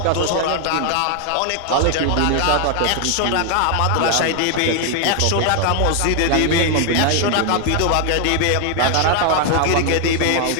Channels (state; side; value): different; both; correlation 0.00